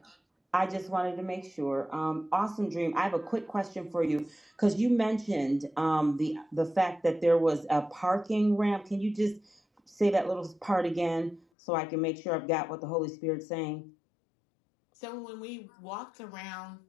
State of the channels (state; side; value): drops out; right; at 11.4 s